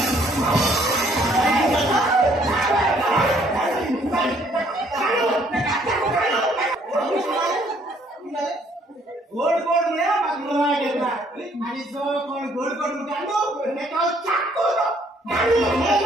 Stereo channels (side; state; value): both; normal; correlation 0.64